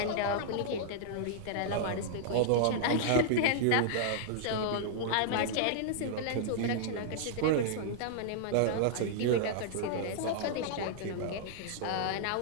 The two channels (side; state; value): both; different; correlation -0.01